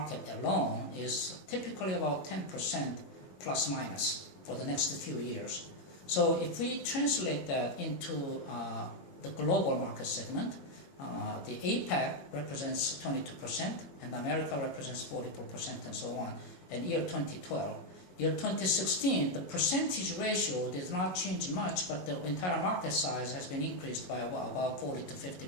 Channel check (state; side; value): late; right; 22 ms